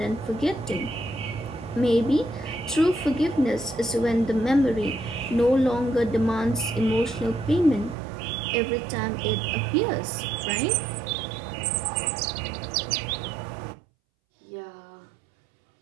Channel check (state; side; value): drops out; left; at 8.0 s